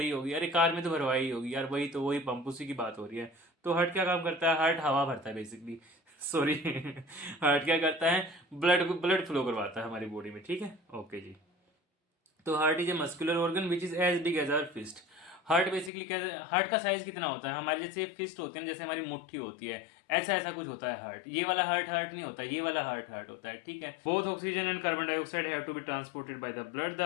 होगी, अरे कार में तो भरवाई होगी यार, वही तो वही पंप, उसी की बात हो रही है। तो हार्ट क्या काम करता है? हार्ट हवा भरता है बेसिकली। सॉरी। हार्ट क्या करता है? ब्लड फ्लो करवाता है हमारी बॉडी में, ठीक है। ओके जी। तो heart is a muscular organ which is as big as our fist. Heart basically क्या है? हार्ट का साइज कितना होता है? हमारे जैसे फिस्ट होती है ना, जैसे हमारी मुट्ठी होती है, ऐसा ऐसा कुछ होता है हार्ट। ये वाला हार्ट हार्ट नहीं होता, ये वाला हार्ट हार्ट होता है, ठीक है। Both oxygen and carbon dioxide have to be transported by the blood.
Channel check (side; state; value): right; drops out; at 15.9 s